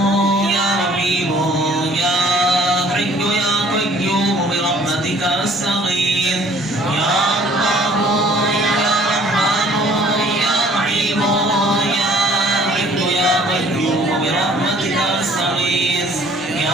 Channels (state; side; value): normal; both; correlation 0.55